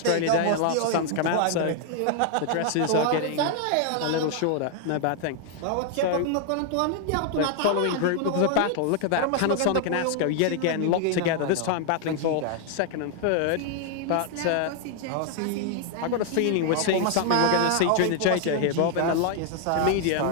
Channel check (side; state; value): both; different; correlation 0.00